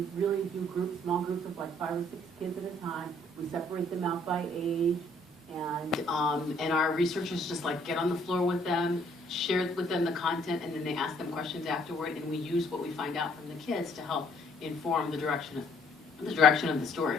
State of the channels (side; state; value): both; normal; correlation 0.63